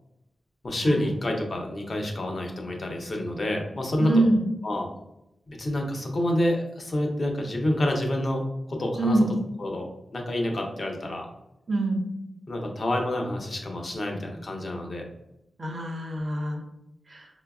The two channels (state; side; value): normal; both; correlation 0.90